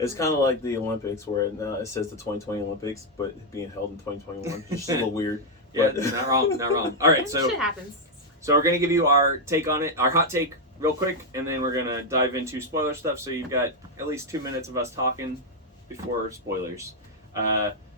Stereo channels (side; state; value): both; normal; correlation 0.00